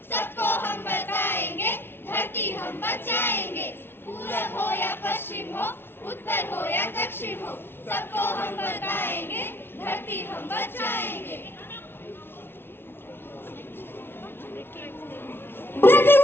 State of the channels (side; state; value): right; late; 0.11 ms